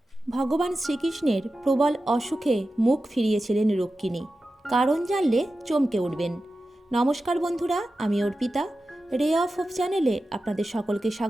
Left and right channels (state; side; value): normal; both; correlation 0.93